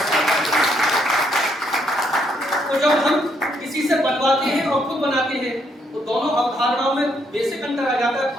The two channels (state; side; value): normal; both; correlation 0.73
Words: तो जब हम किसी से बनवाते हैं और खुद बनाते हैं तो दोनों अवधारणाओं में बेसिक अंतर आ जाता है